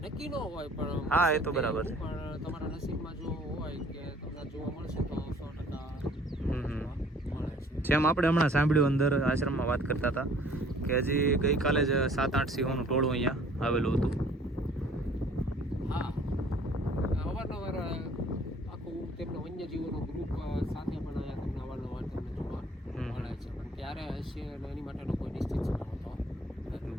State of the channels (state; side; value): normal; both; correlation 0.55